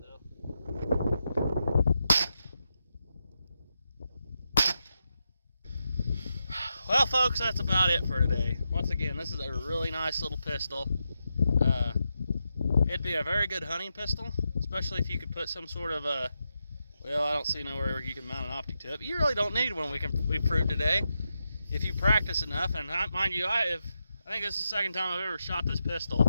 though. Well, folks, that's about it for today. Once again, this is a really nice little pistol. It'd be a very good hunting pistol, especially if you could put some sort of a, well, I don't see nowhere you can mount an optic to it, but you really don't need one. We proved today. If you practice enough, and mind you, I think this is the second time I've ever shot this pistol.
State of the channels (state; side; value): inverted; both; correlation -0.86